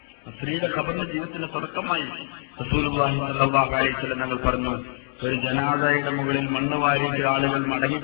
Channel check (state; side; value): silent; right; digital silence